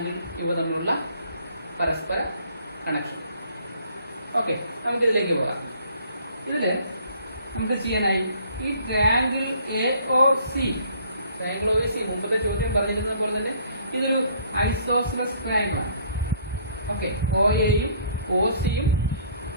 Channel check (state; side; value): inverted; both; correlation -0.59